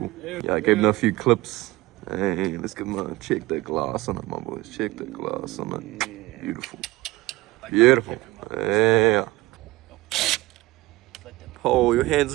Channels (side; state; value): left; quieter; 19.6 dB